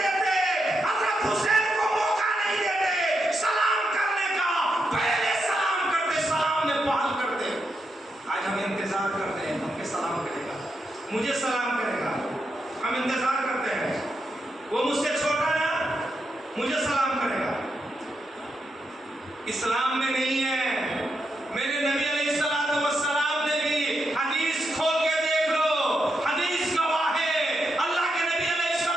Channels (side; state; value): both; normal; correlation 0.84